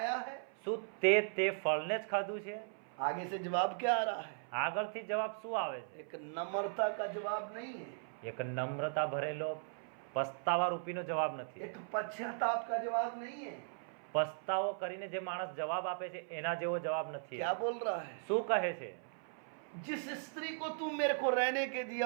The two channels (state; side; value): silent; left; 52 dB below the other